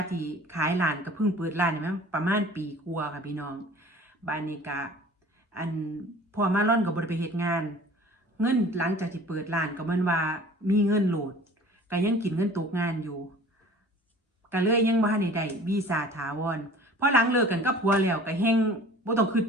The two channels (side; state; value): both; normal; correlation 0.46